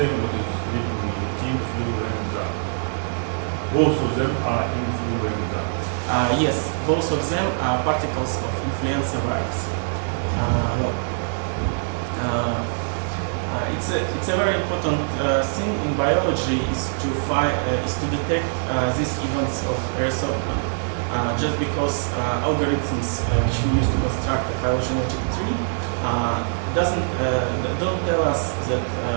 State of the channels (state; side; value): silent; left; digital silence